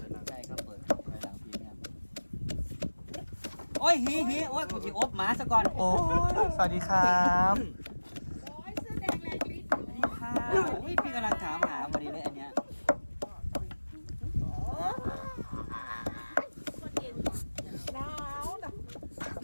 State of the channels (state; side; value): inverted; both; correlation -1.00